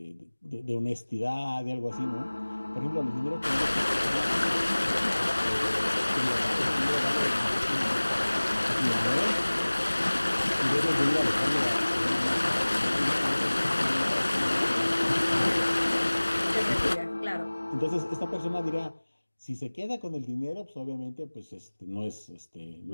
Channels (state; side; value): inverted; both; correlation -1.00